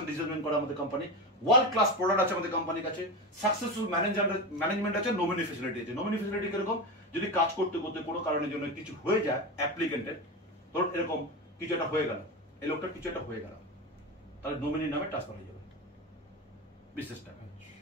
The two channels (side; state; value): both; normal; correlation 0.20